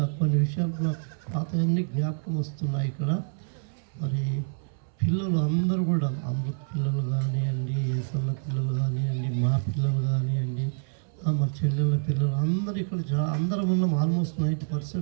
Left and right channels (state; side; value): silent; left; 60 dB below the other